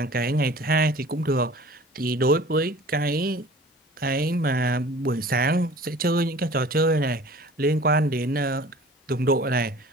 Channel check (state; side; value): normal; both; correlation 0.45